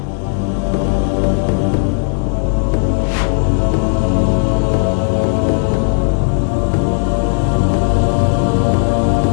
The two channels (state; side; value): silent; right; digital silence